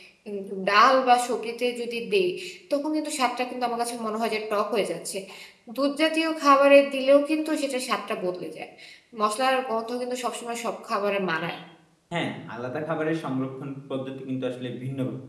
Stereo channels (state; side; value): identical; both; correlation 1.00